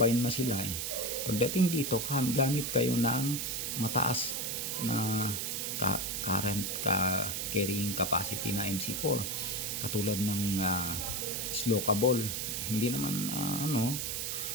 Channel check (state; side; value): noise; right; hiss, 2 dB below the sound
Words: na sila pagdating dito, gamit kayo ng mataas na current carrying capacity na MC4, katulad ng Slokable. Hindi naman